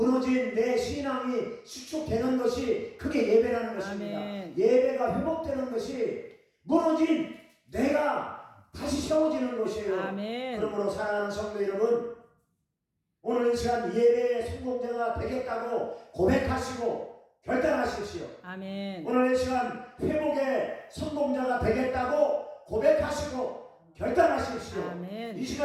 내 신앙이 수축되는 것이 그게 예배라는 것입니다. 아멘. 예배가 회복되는 것이 무너진 내가 다시 세워지는 것이에요. 아멘. 그러므로 사랑하는 성도 여러분, 오늘 이 시간 예배의 성공자가 되겠다고 고백하시고 결단하십시오. 아멘. 오늘 이 시간 회복의 성공자가 되겠다고 고백하시고 결단하십시오. 아멘. 이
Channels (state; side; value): identical; both; correlation 1.00